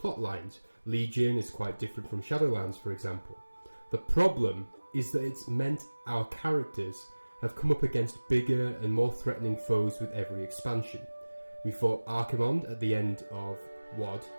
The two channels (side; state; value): both; inverted; correlation -1.00